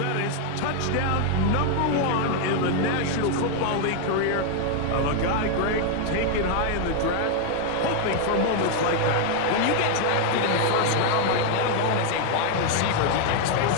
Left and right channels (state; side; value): different; both; correlation 0.00